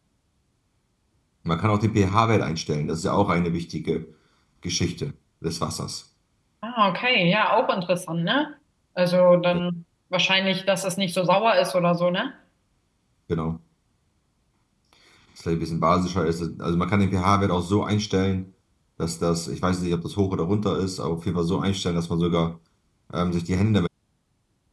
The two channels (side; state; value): both; identical; correlation 1.00